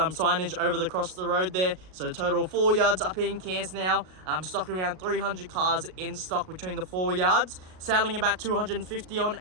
signage over across the road there, so total 4 yards up in Cairns now. Stocking around 300 cars in stock between the 4 yards, selling about 250 on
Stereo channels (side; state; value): left; late; 38 ms